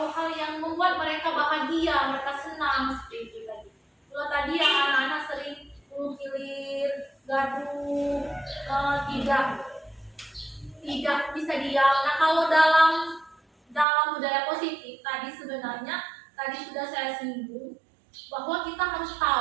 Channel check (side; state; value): left; drops out; at 13.9 s